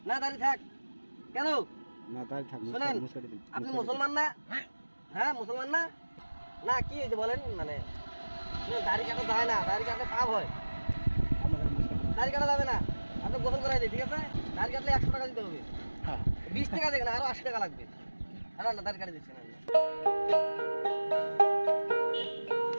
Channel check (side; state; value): both; inverted; correlation -1.00